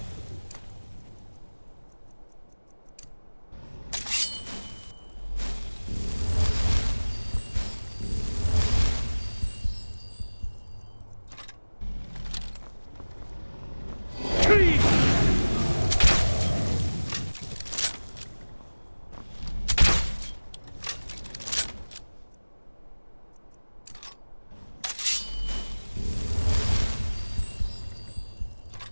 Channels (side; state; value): both; inverted; correlation -1.00